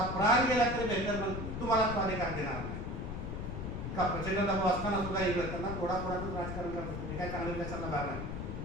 प्राण गेला तरी बेहतर, मग तुम्हाला तो अधिकार देणार नाही. का प्रचंड दबाव असताना सुद्धा इंग्रज त्यांना थोडाच राजकारण करत होते, काय चांगलं विचारायला भाग नाही.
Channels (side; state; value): left; noise; rumble, 5 dB below the sound